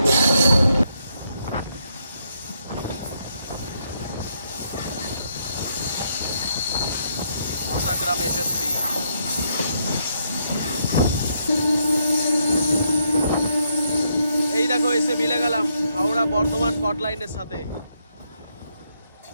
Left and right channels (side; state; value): both; inverted; correlation -0.76